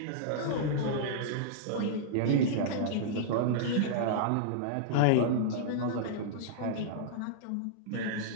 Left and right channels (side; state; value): both; different; correlation -0.02